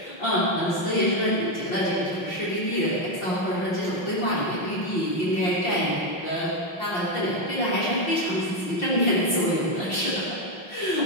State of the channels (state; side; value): late; right; 5.7 ms